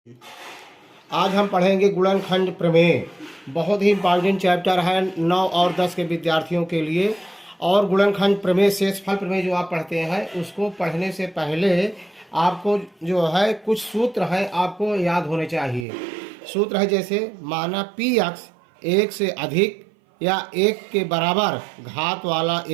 आज हम पढ़ेंगे गुणनखंड प्रमेय। बहुत ही इम्पॉर्टेंट चैप्टर है 9 और 10 के विद्यार्थियों के लिए। और गुणनखंड प्रमेय शेषफल प्रमेय जो आप पढ़ते हैं उसको पढ़ने से पहले आपको जो है कुछ सूत्र हैं आपको याद होने चाहिए। सूत्र है जैसे माना पी एक्स एक से अधिक या एक के बराबर घात वाला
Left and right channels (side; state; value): left; drops out; at 15.9 s